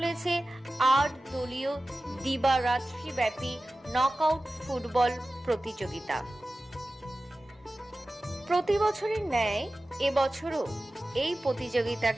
৮ দলীয় দিবারাত্রি ব্যাপী নকআউট ফুটবল প্রতিযোগিতা। প্রতি বছরের ন্যায় এবছরও এই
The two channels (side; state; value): both; normal; correlation 0.95